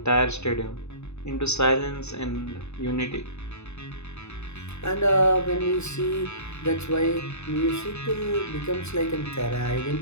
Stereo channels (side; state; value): right; late; 0.81 ms